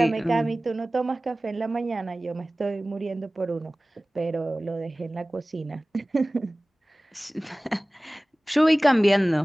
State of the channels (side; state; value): both; normal; correlation 0.98